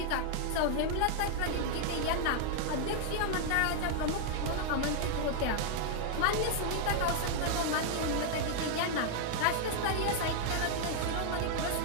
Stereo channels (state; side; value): different; both; correlation 0.00